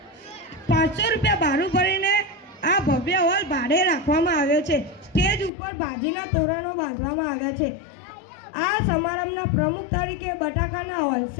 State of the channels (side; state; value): right; drops out; at 5.5 s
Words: 500 રૂપિયા ભાડું ભરીને આ ભવ્ય હોલ ભાડે રાખવામાં આવ્યો છે. સ્ટેજ ઉપર ભાજીના તોરણો બાંધવામાં આવ્યા છે. આ સમારંભના પ્રમુખ તરીકે બટાકાના